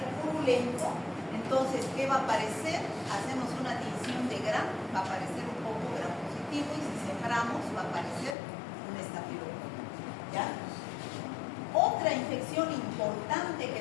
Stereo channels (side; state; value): right; drops out; at 8.3 s